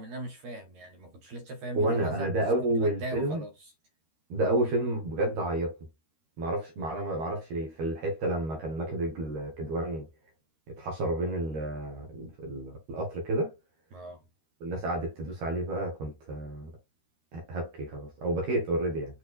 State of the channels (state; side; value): late; left; 13 ms